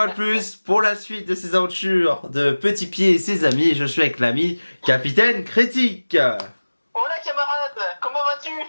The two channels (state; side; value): inverted; both; correlation -1.00